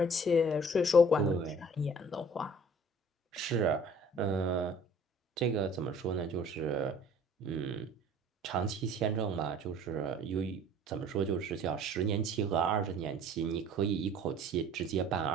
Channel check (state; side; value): normal; both; correlation 0.51